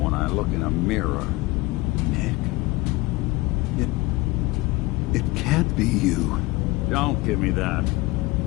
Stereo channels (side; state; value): right; quieter; 21.0 dB